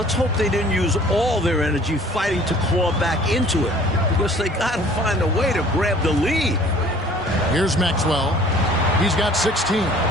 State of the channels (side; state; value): both; normal; correlation 0.52